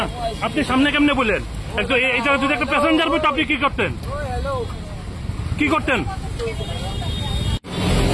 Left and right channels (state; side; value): identical; both; correlation 1.00